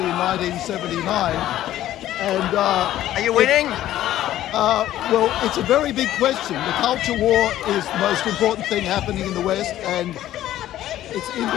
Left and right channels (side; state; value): right; quieter; 13.3 dB